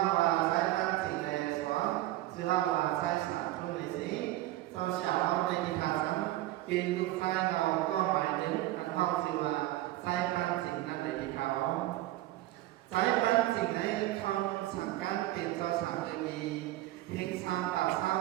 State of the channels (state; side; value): quieter; left; 15.9 dB